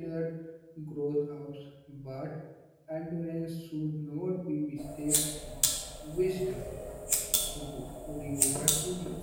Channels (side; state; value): both; identical; correlation 1.00